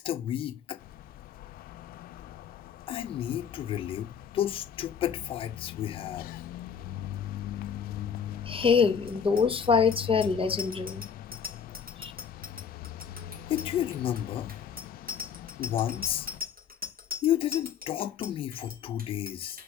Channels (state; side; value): quieter; right; 7.2 dB